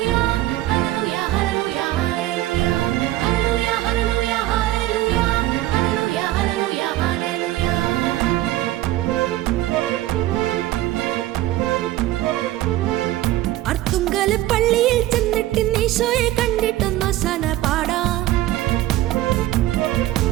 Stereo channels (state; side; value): quieter; left; 15.5 dB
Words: പള്ളിയിൽ ചെന്നിട്ട് ഈശോയെ കണ്ടിട്ടൊന്നു സന പാടാം.